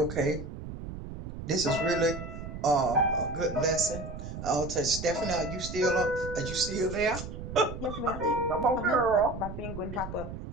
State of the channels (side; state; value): right; noise; rumble, 9 dB below the sound